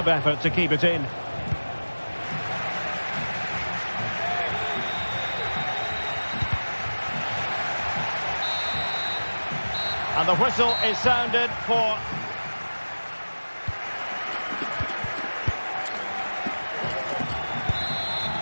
effort to keep it in. And the whistle is sounded for...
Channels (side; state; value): both; inverted; correlation -1.00